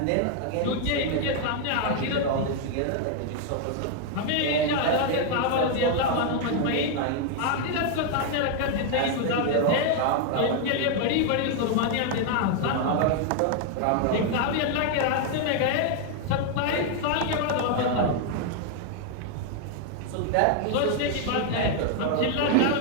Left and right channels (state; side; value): different; both; correlation 0.00